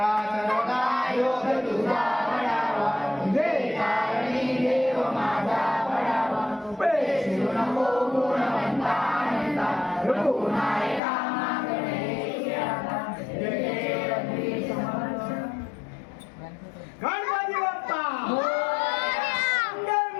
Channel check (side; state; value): right; drops out; at 11.0 s